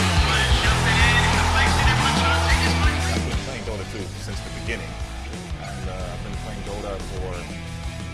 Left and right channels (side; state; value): both; identical; correlation 1.00